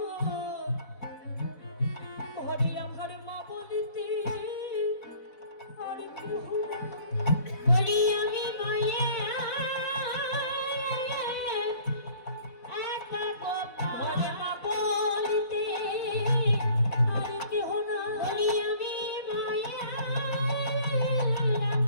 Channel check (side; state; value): right; late; 4.1 ms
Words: ঘরে আমার মা বলিতে আর কেহ বলি আমি